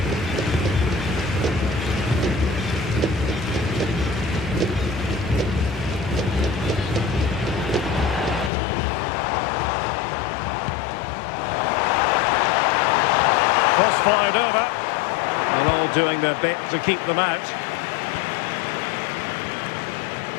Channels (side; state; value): right; drops out; at 8.5 s